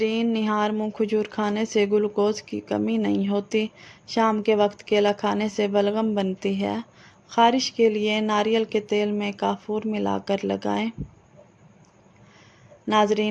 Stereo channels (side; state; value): both; identical; correlation 1.00